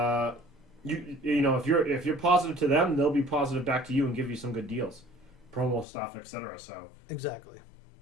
if you're positive to them, they'll be positive back to you and give you some good deals, promo stuff, etc. So exactly.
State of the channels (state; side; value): drops out; right; at 5.9 s